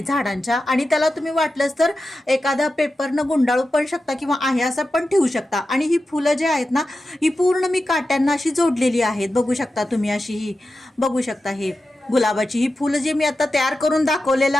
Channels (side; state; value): both; normal; correlation 0.92